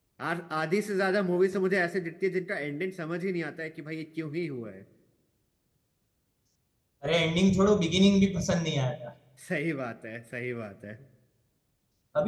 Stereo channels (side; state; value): both; identical; correlation 1.00